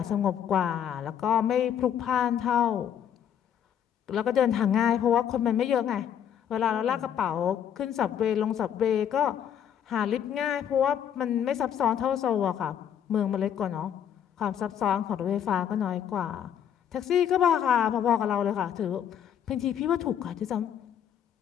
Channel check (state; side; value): quieter; right; 9.1 dB